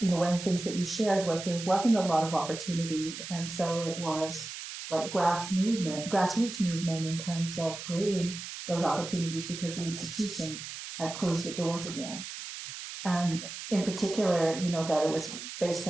one of the things that you shared was there wasn't a lot of opportunities, and so it was like grassroots movement in terms of creating those opportunities because the institutions had closed the doors again. And in particular, that it was based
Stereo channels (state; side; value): noise; right; hiss, 9 dB below the sound